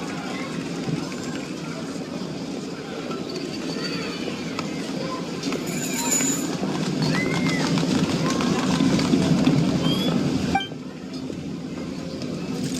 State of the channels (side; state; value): both; identical; correlation 1.00